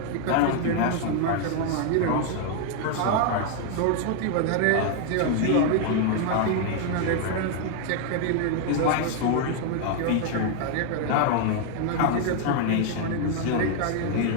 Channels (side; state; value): both; different; correlation 0.00